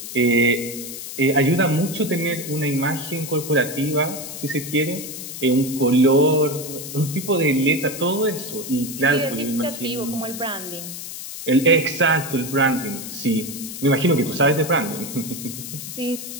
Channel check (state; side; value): noise; left; hiss, 9 dB below the sound